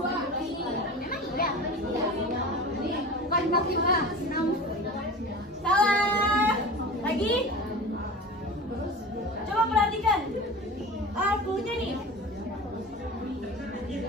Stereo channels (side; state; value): both; normal; correlation 0.34